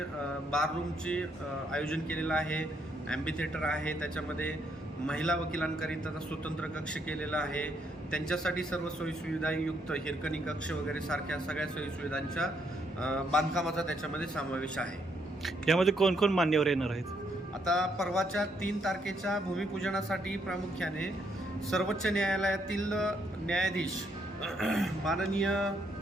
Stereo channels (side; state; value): both; normal; correlation 0.73